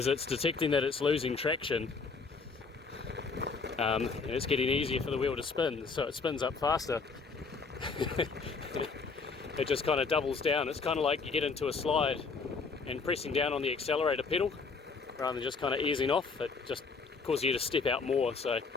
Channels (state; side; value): quieter; right; 4.7 dB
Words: it's detecting that it's losing traction, and it's getting easier for the wheel to spin, so it spins up faster. It just kind of doubles down. It's kind of like you get into a slide and pressing down on the accelerator pedal rather than just kind of easing off. It just causes you to step out more, so